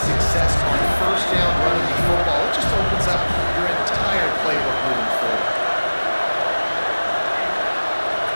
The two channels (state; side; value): inverted; both; correlation -1.00